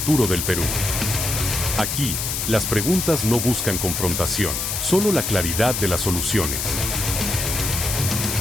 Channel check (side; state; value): left; noise; hiss, 2 dB below the sound